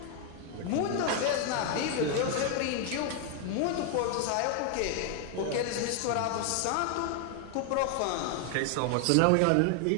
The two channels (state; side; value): different; both; correlation 0.00